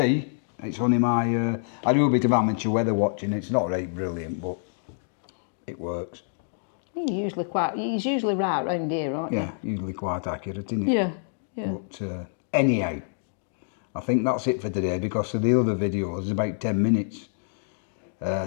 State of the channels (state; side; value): silent; right; digital silence